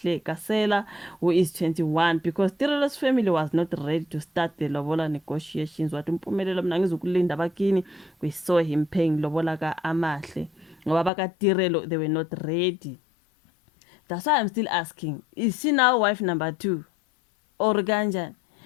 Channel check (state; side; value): drops out; right; at 11.1 s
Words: Kasela, who is 21, because Tirelo's family was not ready to start the lobola negotiations. Wathi Mpumelelo mina ngizokulinda bakini, we saw him paying lobola ka-Amahle. Ngoba baka-Tirelo, they were not ready. That's why I'm still asking, is she now wife number 2? Or kanjani?